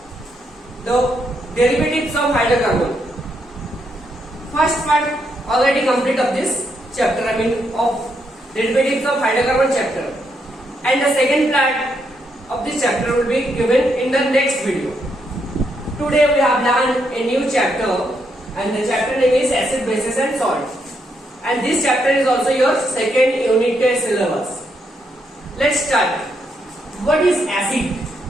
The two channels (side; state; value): both; normal; correlation 0.78